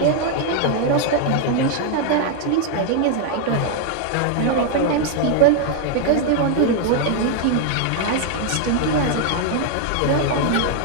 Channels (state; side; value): different; both; correlation 0.00